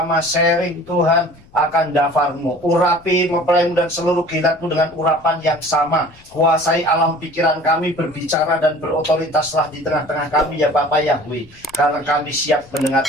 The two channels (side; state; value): left; noise; rumble, 26 dB below the sound